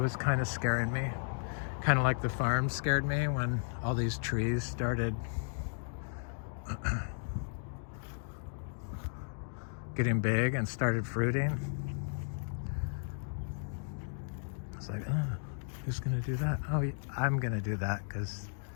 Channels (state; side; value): silent; right; digital silence